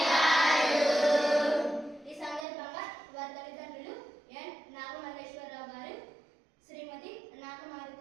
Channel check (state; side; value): drops out; left; at 2.5 s